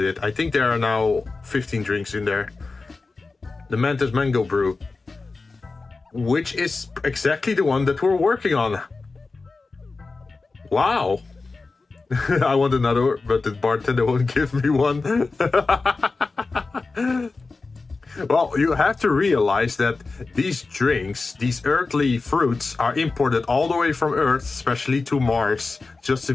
it. I think there are now 15 drinks in there. The Mantis Mango Brew, which is exactly the one that we're working on. Wow. I want another, but the bartender won't give me one. Well, you have to realize that these drinks, these earthly fruits, are imported all the way from Earth, especially to Mars, just to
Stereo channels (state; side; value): quieter; right; 3.9 dB